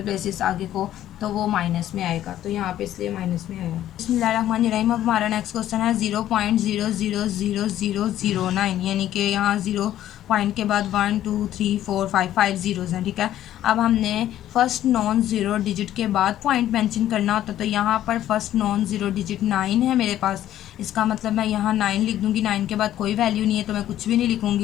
प्लेसेस आगे को, तो वो माइनस में आएगा। तो यहाँ पे इसलिए माइनस में आएगा। बिस्मिल्लाहिर्रहमानिर्रहीम। अब हमारा नेक्स्ट क्वेश्चन है 0.000009, यानी कि यहाँ 0 पॉइंट के बाद 1 2 3 4 5 ज़ीरोज़ हैं। ठीक है, अब हमने फर्स्ट नॉन ज़ीरो डिजिट के बाद पॉइंट मेंशन करना होता है। तो यहाँ पर फर्स्ट नॉन ज़ीरो डिजिट 9 है मेरे पास, इसका मतलब मैं यहाँ 9 लिख दूँगी। 9 के बाद कोई वैल्यू नहीं है तो मैं कुछ भी नहीं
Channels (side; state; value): right; quieter; 12.4 dB